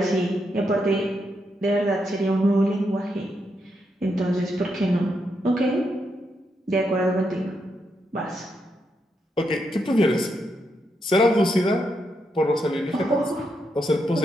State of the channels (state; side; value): normal; both; correlation 0.81